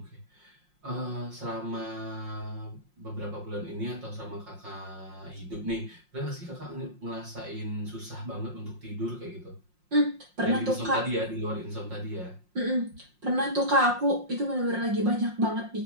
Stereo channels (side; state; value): left; late; 5.6 ms